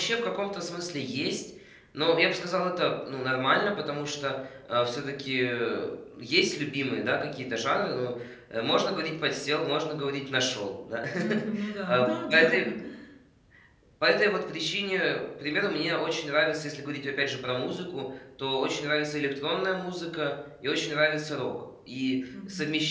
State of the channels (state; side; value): identical; both; correlation 1.00